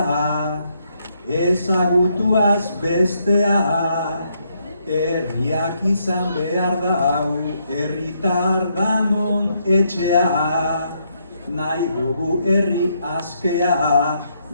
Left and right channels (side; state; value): both; inverted; correlation -0.75